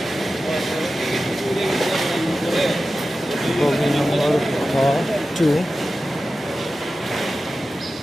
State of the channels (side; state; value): both; normal; correlation 0.93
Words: বগি নম্বর খ2।